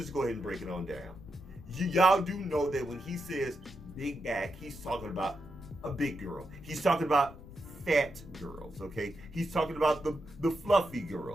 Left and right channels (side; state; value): left; noise; rumble, 16 dB below the sound